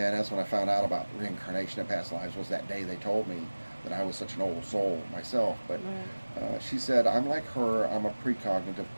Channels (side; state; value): both; inverted; correlation -1.00